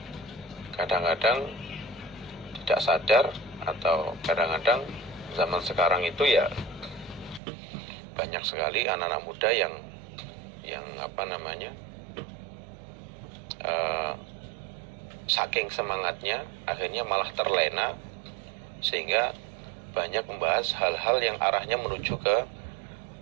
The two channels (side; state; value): left; drops out; at 7.4 s